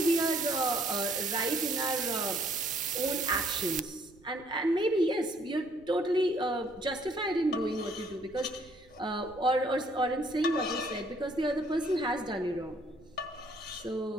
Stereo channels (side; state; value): right; noise; rumble, 27 dB below the sound